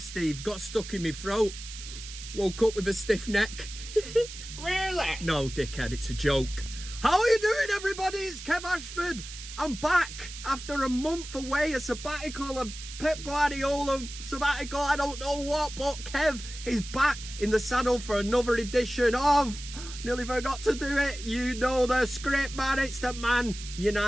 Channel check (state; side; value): noise; right; hiss, 12 dB below the sound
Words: got stuck in my throat. Woke up with a stiff neck. Really? No, dickhead, it's a joke. How are you doing, everybody? It's Kev Ashford. I'm back after a month away, a sabbatical, a Pep Guardiola sabbatical, I don't know what, but Kev is back in the saddle for another edition of... Nearly forgot to do it. You know the script, man. It's the